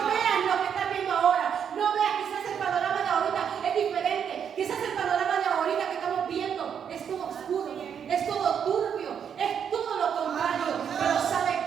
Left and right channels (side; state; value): left; quieter; 7.9 dB